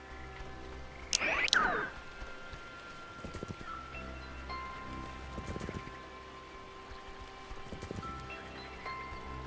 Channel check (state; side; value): identical; both; correlation 1.00